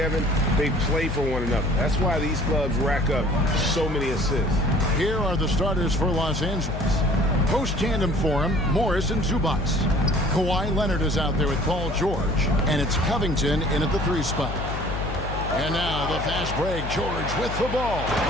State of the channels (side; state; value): left; noise; hum, 6 dB below the sound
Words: they play for one another. That's why these clubs rack up so many assists. Here are the starters for Los Angeles. Post-tandem for him, Morris and Zubac. Kawhi Leonard is out there with Paul George, and it's Covington in at the 3 spot. And now the fast break, George with the ball,